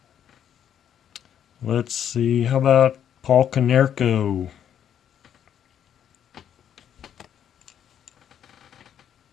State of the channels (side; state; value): right; quieter; 9.4 dB